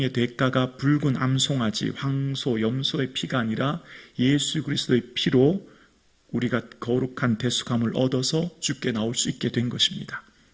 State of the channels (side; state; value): both; identical; correlation 1.00